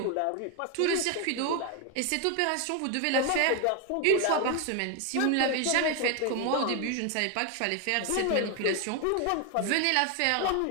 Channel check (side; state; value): both; different; correlation 0.01